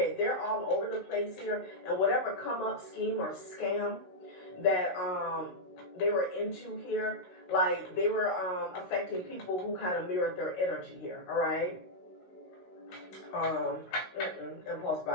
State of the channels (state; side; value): late; right; 16 ms